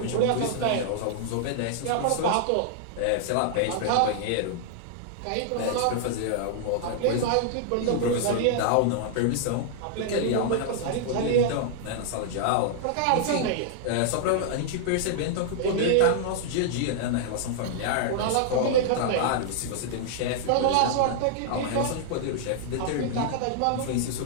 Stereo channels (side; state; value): both; different; correlation -0.01